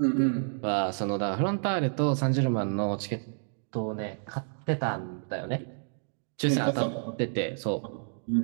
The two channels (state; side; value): silent; left; digital silence